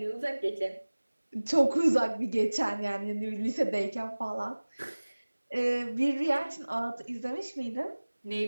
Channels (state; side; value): inverted; both; correlation -1.00